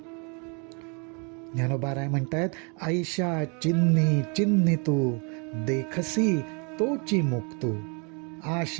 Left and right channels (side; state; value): left; quieter; 35.0 dB